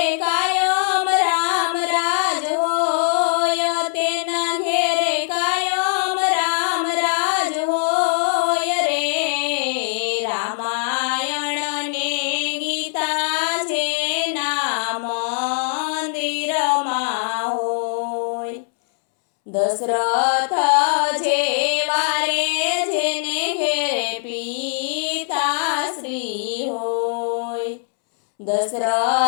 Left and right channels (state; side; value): silent; right; 65 dB below the other